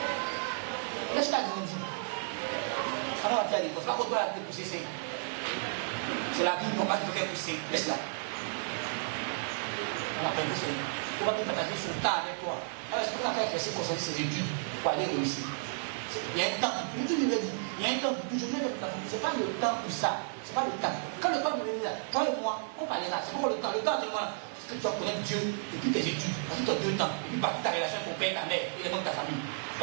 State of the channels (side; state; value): left; silent; 56 dB below the other